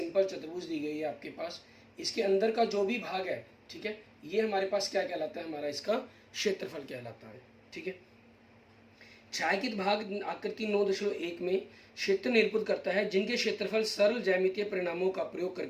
चतुर्भुज दी गई है आपके पास। इसके अंदर का जो भी भाग है, ठीक है, ये हमारे पास क्या कहलाता है, हमारा इसका क्षेत्रफल कहलाता है। ठीक है, छायांकित भाग आकृति 9.1 में क्षेत्र निरूपित करता है जिनके क्षेत्रफल सरल ज्यामितीय परिणामों का प्रयोग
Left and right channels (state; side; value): identical; both; correlation 1.00